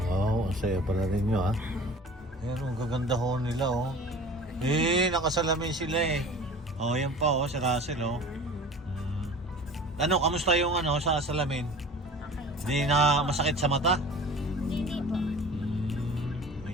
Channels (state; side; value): normal; both; correlation 0.41